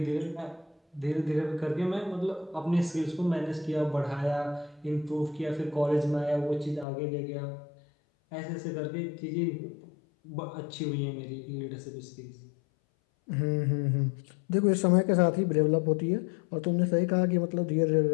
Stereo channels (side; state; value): right; drops out; at 6.9 s